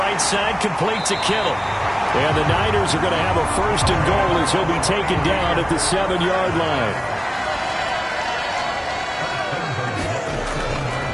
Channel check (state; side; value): identical; both; correlation 1.00